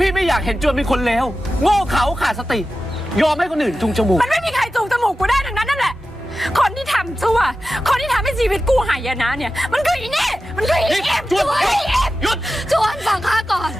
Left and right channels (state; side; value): normal; both; correlation 0.94